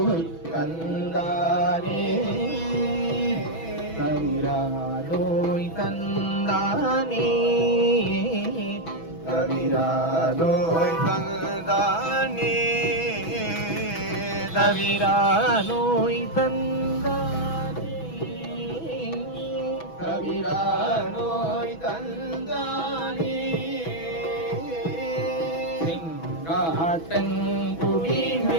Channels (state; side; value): late; right; 6.1 ms